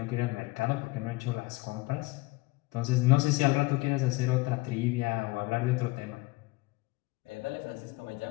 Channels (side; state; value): right; quieter; 22.1 dB